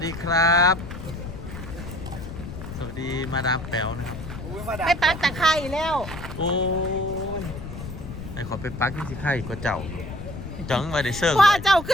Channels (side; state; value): left; noise; rumble, 10 dB below the sound